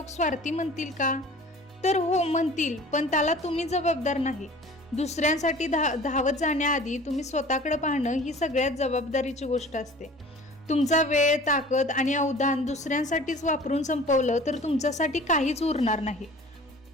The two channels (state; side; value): normal; both; correlation 0.45